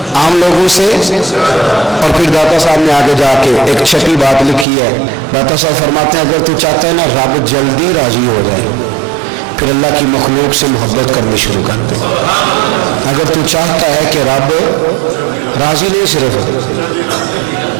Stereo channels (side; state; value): left; drops out; at 4.7 s